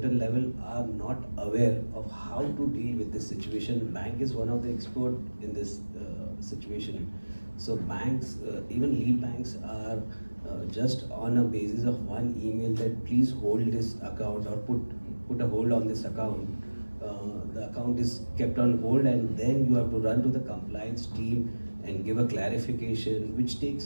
level are not aware of how to deal with this situation. Bank is one of the expert in this situation. So banks, even lead banks are just on a basis of one email that please hold this account or put a hold on this account. The account is kept on hold, and then you have to run to the compliance team and give a clarification, which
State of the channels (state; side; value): inverted; both; correlation -1.00